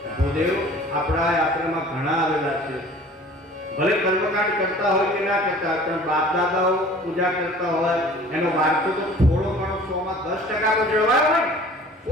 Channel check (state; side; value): normal; both; correlation 0.47